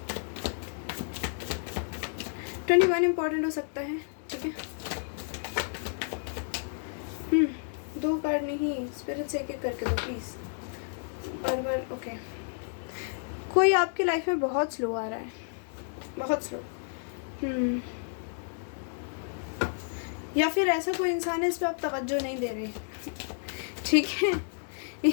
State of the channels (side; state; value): right; silent; 57 dB below the other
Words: 21 इम्पॉर्टेंट हो सकता है, ठीक है। 2 कार्ड नहीं, स्पिरिट से एक करके दो प्लीज़, बार ओके। कोई आपकी लाइफ में बहुत स्लो आ रहा है, बहुत स्लो, या फिर ऐसा कोई इंसान है इस पर आप तवज्जो नहीं दे रहे, ठीक है।